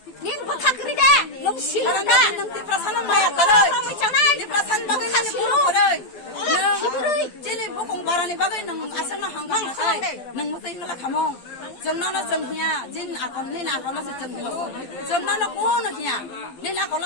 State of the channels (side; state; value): right; late; 12 ms